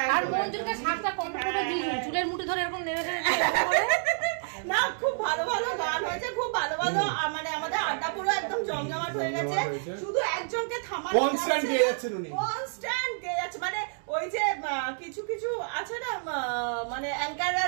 আর মঞ্জুলিকা শাকটা কমপ্লিট দিয়ে চুলের মুঠি ধরে এরকম নেড়ে নেড়ে না, খুব ভালো ভালো গান হয়েছে, খুব ভালো ভালো, মানে আমাদের আড্ডা পুরো একদম জমজমাট হয়ে গেছে। শুধু একজনকে থামানো কনস্ট্যান্ট গেয়ে যাচ্ছেন উনি, কনস্ট্যান্ট গেয়ে যাচ্ছে। মানে ওই যে কিছু কিছু আছে না, মানে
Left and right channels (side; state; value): left; silent; digital silence